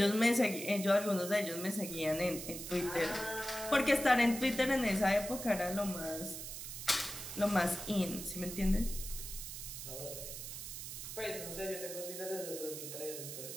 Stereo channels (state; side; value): noise; right; hiss, 8 dB below the sound